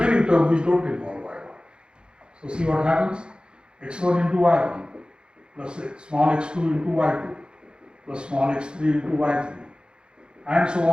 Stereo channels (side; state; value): left; late; 0.051 ms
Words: terms which don't involve y bar. So, see what happens? x1 into y1 plus small x2 into y2 plus small x3 into y3 and so